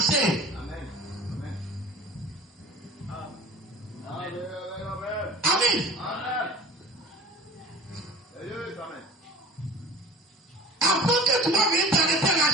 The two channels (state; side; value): normal; both; correlation 0.41